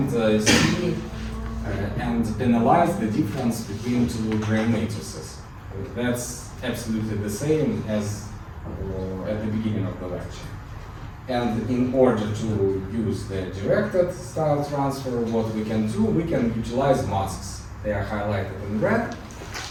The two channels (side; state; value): both; identical; correlation 1.00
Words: see and analyze the difference between two Gram matrices. That's absolutely the same as at the beginning of the lecture. And in order to use the directed style transfer, what we can do, we can utilize masks. They are highlighted in red.